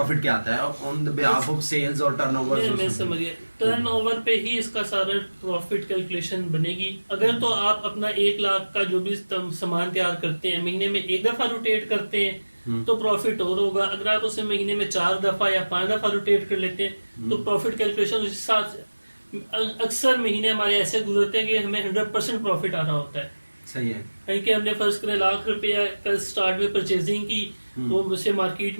क्या आता है on the behalf of sales और टर्नओवर। मैं समझिए, टर्नओवर पे ही इसका सारा प्रॉफिट कैलकुलेशन बनेगी। अगर तो आप अपना 1 लाख का जो भी सामान तैयार करते हैं, महीने में 1 दफा रोटेट करते हैं तो प्रॉफिट और होगा। अगर आप उसे महीने में 4 दफा या 5 दफा रोटेट कर लेते हैं तो प्रॉफिट कैलकुलेशन उस हिसाब से। अक्सर महीने हमारे ऐसे गुजरते हैं कि हमें 100% प्रॉफिट आ रहा होता है। सही है कि हमने फर्ज करें लाख रुपया का स्टार्ट में परचेजिंग की, वो उसे मार्केट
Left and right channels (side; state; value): both; inverted; correlation -1.00